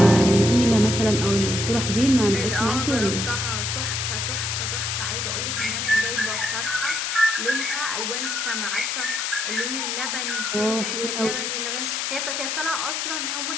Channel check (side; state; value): left; noise; hiss, 1 dB below the sound